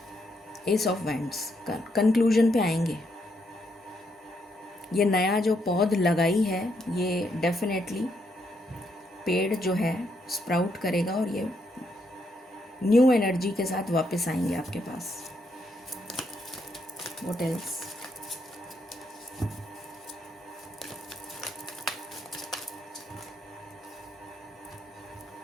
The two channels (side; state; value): both; normal; correlation 0.77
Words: एस ऑफ वैंड्स, कंक्लूजन पे आएंगे। ये नया जो पौध लगाई है, ये डेफिनेटली पेड़ जो है स्प्राउट करेगा और ये न्यू एनर्जी के साथ वापस आएंगे आपके पास। What else?